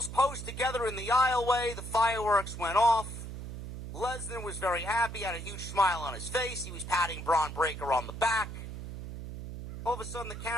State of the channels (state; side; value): noise; right; hum, 9 dB below the sound